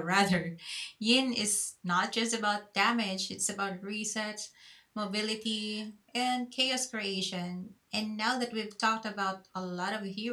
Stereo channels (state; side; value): identical; both; correlation 1.00